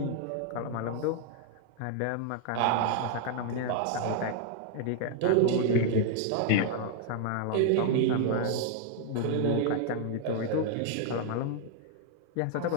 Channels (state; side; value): different; both; correlation 0.00